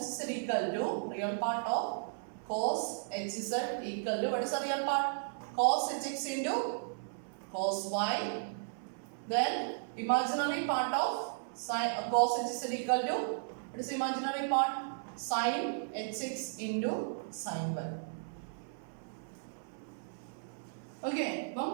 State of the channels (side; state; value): left; silent; 54 dB below the other